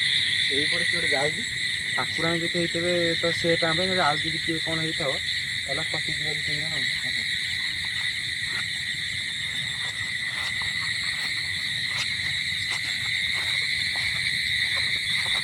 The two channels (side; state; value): both; identical; correlation 1.00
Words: এইপଟେ କିଏ ଗୋଟେ ଯାଉଛି ଠାକୁରାଣୀ ଯଦି ହେଇଥିବେ ତ ସେ ଟାଇମ୍ ପାଇଁ ଆଉ ଯଦି କିଏ କ'ଣ ହେଇଥିବ ତାହେଲେ ପଶିଯିବ ତିନି ଜଣ।